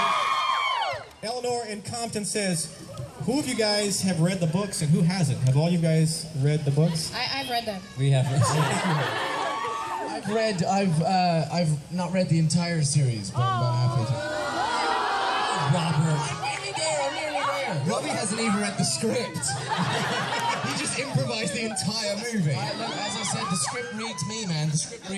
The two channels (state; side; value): identical; both; correlation 1.00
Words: Eleanor in Compton says, who of you guys have read the books and who hasn't? Have all you guys read the books? I've read them. We have. I've not read the entire series, but I'm about halfway through. Robert. I'm nearly there. Robbie hasn't even read the script. He just improvised the entire movie. As I said, the script reads me, man. The script